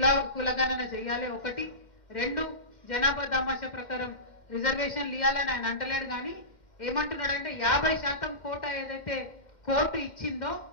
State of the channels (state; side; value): late; right; 2.1 ms